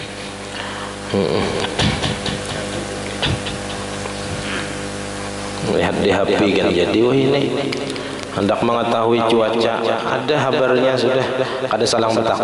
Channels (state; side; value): identical; both; correlation 1.00